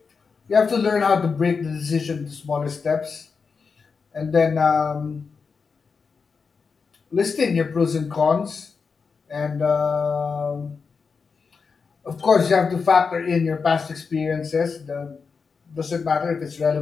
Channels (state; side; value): quieter; right; 5.2 dB